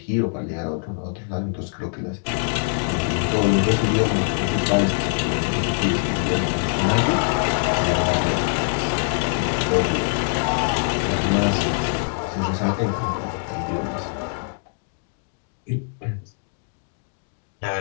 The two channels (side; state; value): right; silent; 62 dB below the other